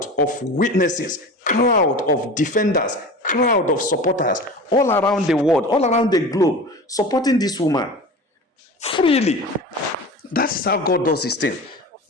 of witnesses, crowd of defenders, crowd of supporters all around the world, all around the globe, supporting this woman freely. That's how God does his thing.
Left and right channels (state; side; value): normal; both; correlation 0.34